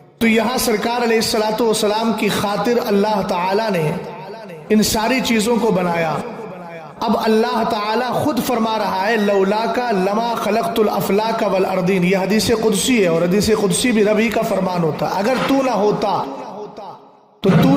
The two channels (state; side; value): identical; both; correlation 1.00